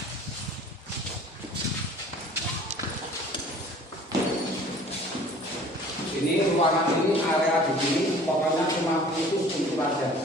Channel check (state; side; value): normal; both; correlation 0.49